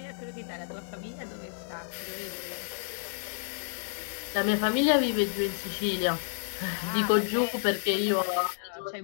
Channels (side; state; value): right; silent; digital silence